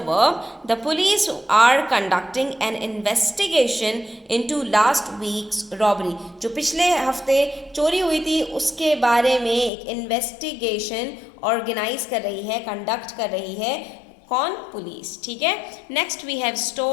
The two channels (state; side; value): drops out; right; at 9.7 s